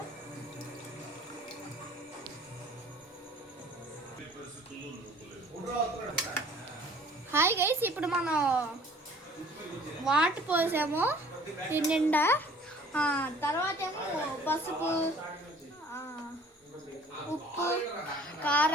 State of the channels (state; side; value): normal; both; correlation 0.52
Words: హాయ్ గైస్, ఇప్పుడు మనం వాటర్ పోసాము దీని నిండా. తర్వాత ఏమో పసుపు, ఉప్పు,